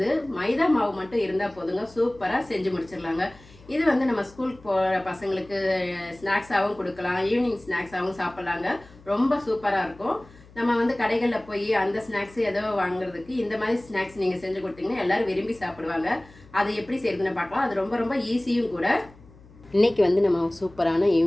மைதா மாவு மட்டும் இருந்தால் போதுங்க, சூப்பராக செஞ்சு முடிச்சிடலாங்க. இது நம்ம ஸ்கூலுக்கு போகிற பசங்களுக்கு ஸ்நாக்ஸாகவும் கொடுக்கலாம், ஈவினிங் ஸ்நாக்ஸாகவும் சாப்பிட்லாங்க. ரொம்ப சூப்பராக இருக்கும். நம்ம கடைகளில் போய் அந்த ஸ்நாக்ஸ் ஏதோ வாங்குறதுக்கு இந்த மாதிரி ஸ்நாக்ஸ் நீங்கள் செஞ்சு கொடுத்தீங்கன்னா எல்லோரும் விரும்பி சாப்பிடுவாங்க. அது எப்படி செய்யுதுன்னு பார்க்கலாம். அது ரொம்ப ரொம்ப ஈஸியும் கூட. இன்றைக்கி நம்ம சூப்பரான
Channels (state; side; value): noise; left; hum, 24 dB below the sound